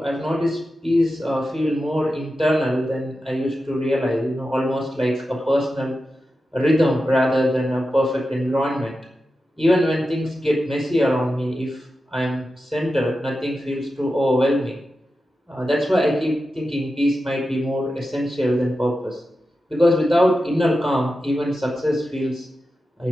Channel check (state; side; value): normal; both; correlation 0.91